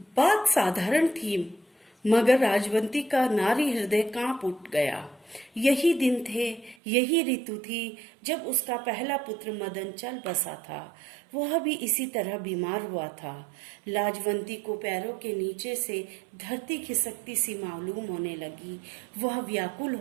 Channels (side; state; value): left; drops out; at 6.8 s